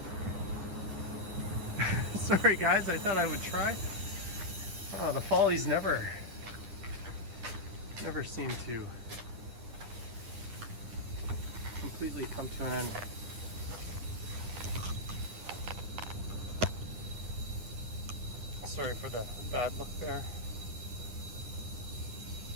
Sorry guys, I thought I would try. Oh, the follies never seem to completely come to an end. Sorry for the bad look there.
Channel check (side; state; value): left; late; 9.7 ms